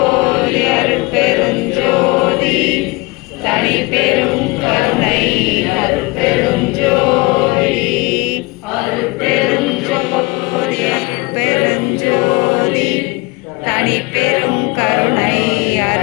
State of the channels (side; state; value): right; quieter; 24.8 dB